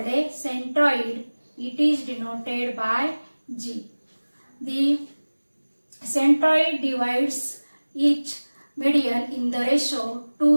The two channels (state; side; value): inverted; both; correlation -1.00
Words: a centroid. It is denoted by G. The centroid divides each median in the ratio